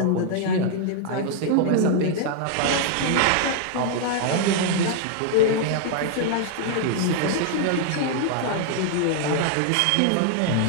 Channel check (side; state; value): both; different; correlation 0.00